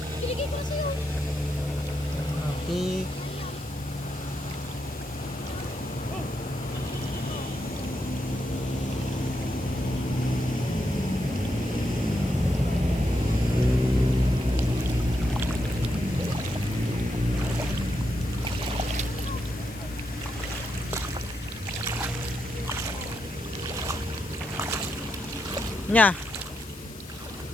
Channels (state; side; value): noise; left; hiss, 17 dB below the sound